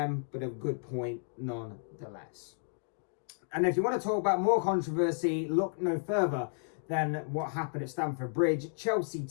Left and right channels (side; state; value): right; silent; digital silence